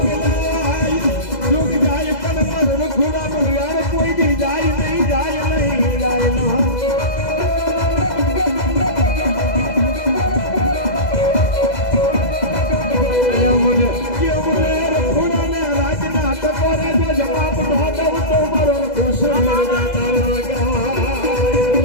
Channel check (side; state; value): right; late; 2.0 ms